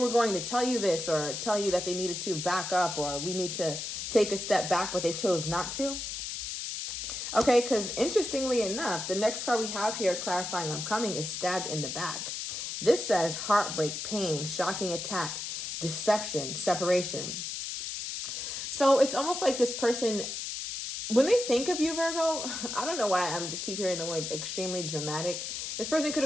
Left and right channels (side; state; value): left; noise; hiss, 5 dB below the sound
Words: going to tell you this, or tell you that they needed to back up, or we need to take a step back, but they chose not to. Okay, because interestingly enough, the next card we have here clarifying I'm coming is stabbed in the back. This says heartbreak, pain, shocking attack, deception, separation. So it's almost like this person, when they think of you, Virgo, I don't know why I'm just keep hearing the word extremely dramatic. This person could